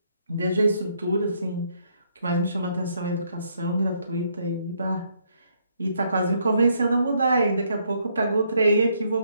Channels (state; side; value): inverted; both; correlation -0.72